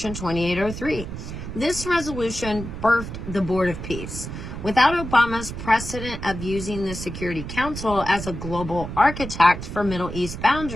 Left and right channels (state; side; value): noise; right; rumble, 8 dB below the sound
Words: 2803. This resolution birthed the Board of Peace. Without Obama's precedent of using the Security Council as a global architect for Middle East